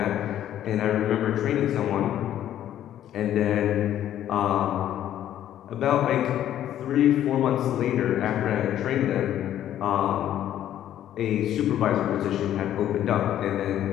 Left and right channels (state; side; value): quieter; right; 11.5 dB